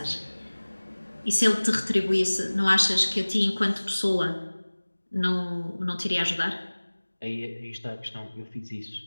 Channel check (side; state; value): both; inverted; correlation -1.00